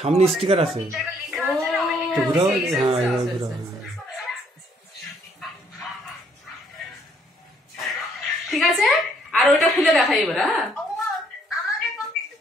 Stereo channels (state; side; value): normal; both; correlation 0.66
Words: সামনে স্টিকার আছে, জায়গা লেখা আছে না, ওই তো ঘুরাও, সেই, সেই, হ্যাঁ সেই, এবার সেই, ঘুরাও, সেই। হ্যাঁ। ঠিক আছে, আর ওইটা খুলে দেখাই এবার। হ্যাঁ, ও, আমাকে কপি